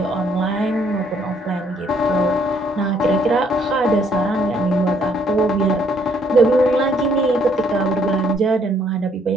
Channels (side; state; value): both; normal; correlation 0.66